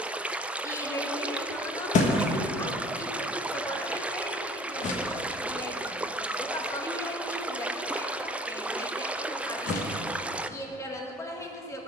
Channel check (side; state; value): both; normal; correlation 0.50